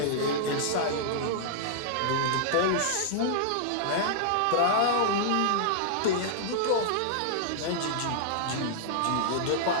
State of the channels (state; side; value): different; both; correlation -0.01